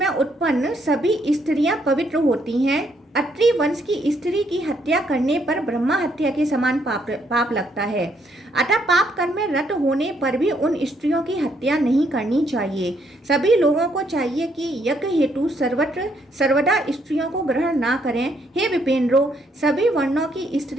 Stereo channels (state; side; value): normal; both; correlation 0.72